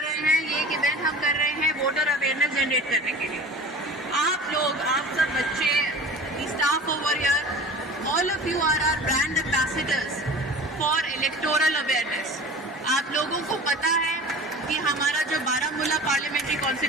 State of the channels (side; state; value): both; normal; correlation 0.38